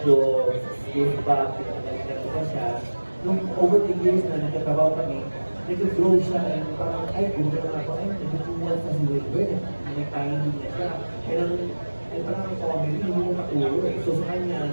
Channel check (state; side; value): inverted; both; correlation -1.00